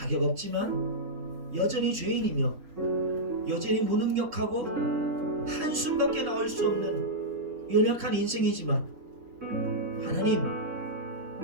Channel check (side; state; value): left; late; 3.9 ms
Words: 없지만 여전히 죄인이며 여전히 무능력하고 한숨밖에 나올 수 없는 연약한 인생이지만 하나님,